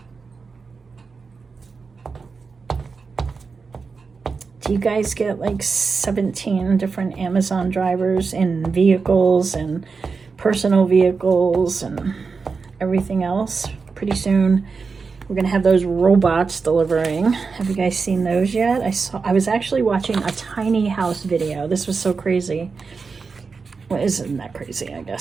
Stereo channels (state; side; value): quieter; left; 4.8 dB